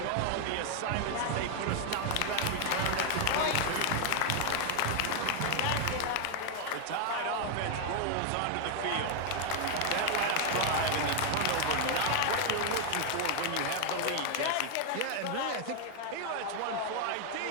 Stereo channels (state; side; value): different; both; correlation 0.00